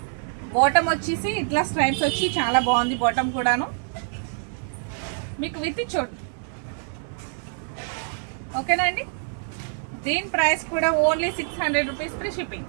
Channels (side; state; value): left; silent; 61 dB below the other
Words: బాటమ్ వచ్చేసి ఇట్లా స్ట్రైప్స్ వచ్చి చాలా బాగుంది. బాటమ్ కూడాను మీకు విత్ చూడండి. ఓకేనా అండి. దీని ప్రైస్ కూడా ఓన్లీ 600 రూపీస్ ఫ్రీ షిప్పింగ్.